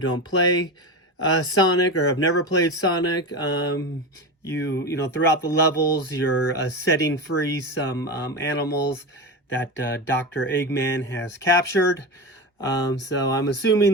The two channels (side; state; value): both; normal; correlation 0.22